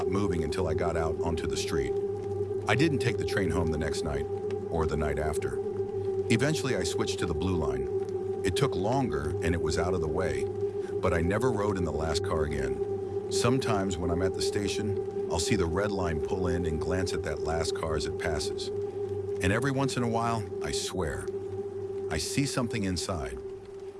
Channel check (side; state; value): both; identical; correlation 1.00